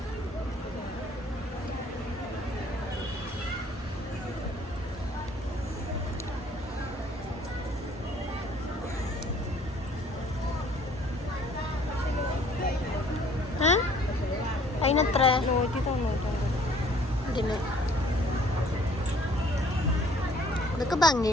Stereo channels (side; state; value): both; normal; correlation 0.57